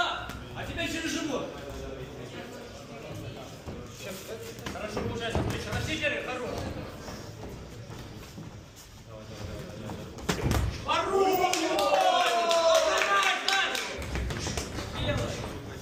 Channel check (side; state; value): both; identical; correlation 1.00